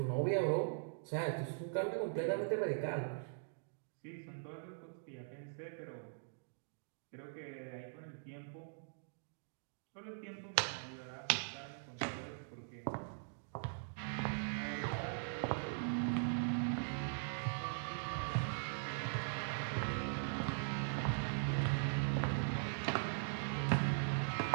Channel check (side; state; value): left; silent; digital silence